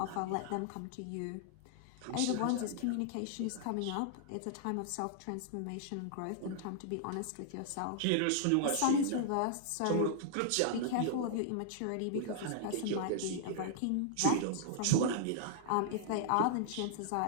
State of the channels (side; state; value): both; different; correlation -0.01